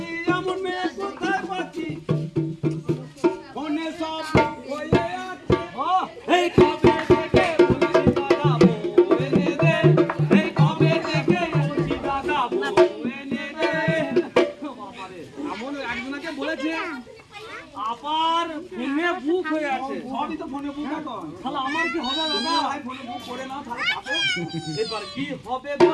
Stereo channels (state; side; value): identical; both; correlation 1.00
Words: এমন মেয়ে কোথায় পাচ্ছি, ফোনে সব হয়ে আছে। এই কবে থেকে বলছি দাদা বউ এনে দে, এই কবে থেকে বলছি দাদা বউ এনে দে। বাবারে, এমন একজনকে বলেছে আবার ফোনে বুক হয়ে আছে। সবই তো ফোনে বুক এখন। তাহলে আমার কি হবে দাদা? ভাই ফোনে বুক করে নাও তাহলে পাবে। এবার কি হবে